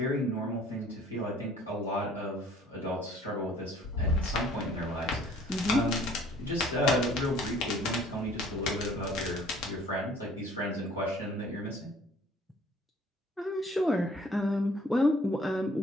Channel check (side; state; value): both; normal; correlation 0.55